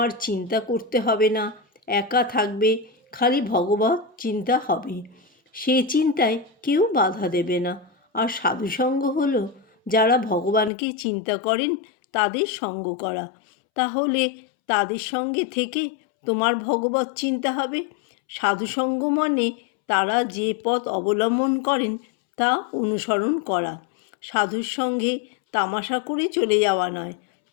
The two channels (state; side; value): drops out; right; at 10.7 s